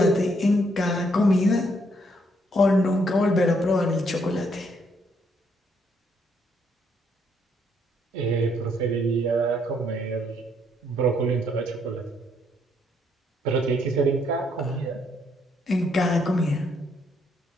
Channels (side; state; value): both; normal; correlation 0.71